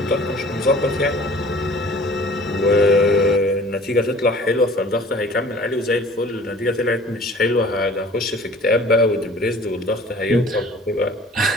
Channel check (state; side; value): normal; both; correlation 0.48